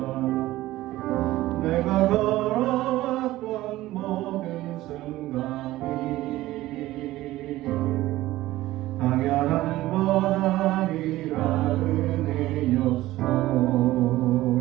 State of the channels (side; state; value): left; quieter; 16.5 dB